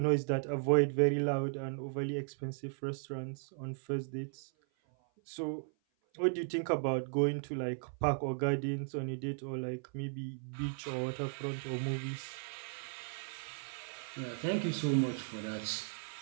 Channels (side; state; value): left; silent; 54 dB below the other